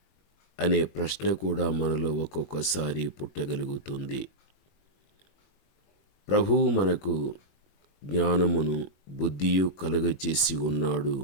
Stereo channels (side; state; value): right; late; 21 ms